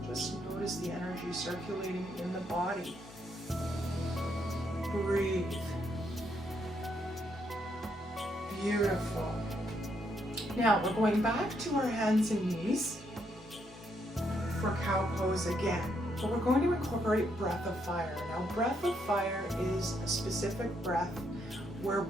Just notice the energy circulating in the body. Breathe. Beautiful. Now we're going back to our hands and knees for cow pose again. But we're going to incorporate breath of fire. Now breath of fire is a specific breath where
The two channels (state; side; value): normal; both; correlation 0.76